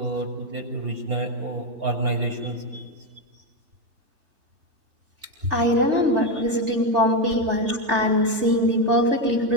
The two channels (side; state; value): left; late; 3.3 ms